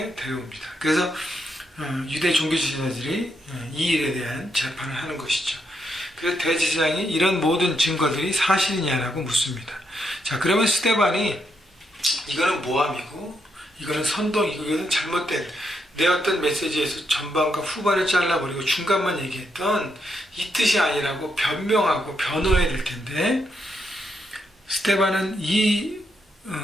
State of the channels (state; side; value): normal; both; correlation 0.80